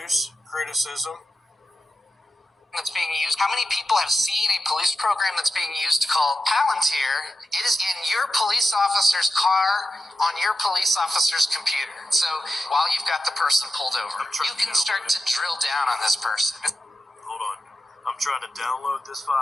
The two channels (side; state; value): both; normal; correlation 0.91